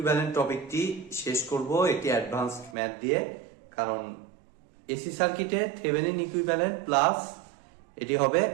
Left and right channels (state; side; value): drops out; left; at 2.8 s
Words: টপিকটি শেষ করব একটি অ্যাডভান্সড ম্যাথ দিয়ে। কারণ এসি সার্কিটে থেভেনিন ইকুইভ্যালেন্ট প্লাস এটি হবে